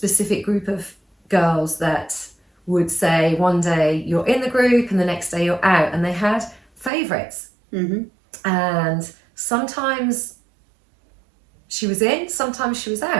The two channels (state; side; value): drops out; left; at 6.9 s